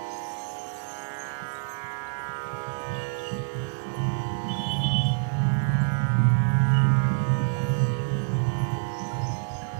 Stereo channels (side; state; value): left; silent; digital silence